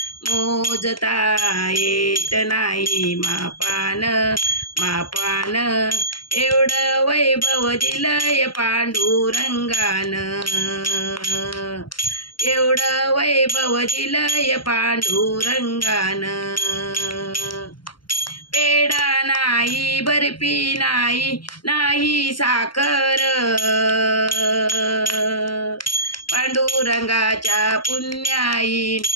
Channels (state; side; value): late; right; 0.72 ms